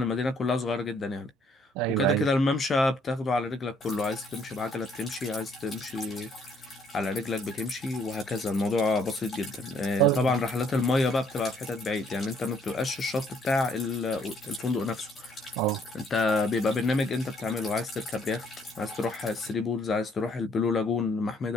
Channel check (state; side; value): normal; both; correlation 0.65